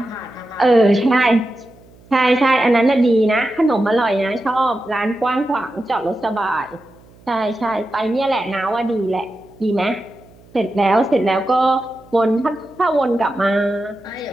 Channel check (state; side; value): noise; right; hum, 26 dB below the sound